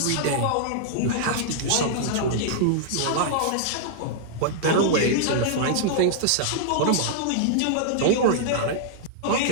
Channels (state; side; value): different; both; correlation -0.01